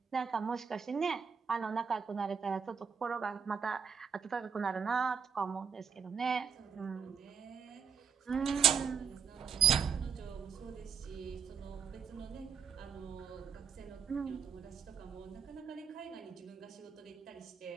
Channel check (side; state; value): left; quieter; 6.8 dB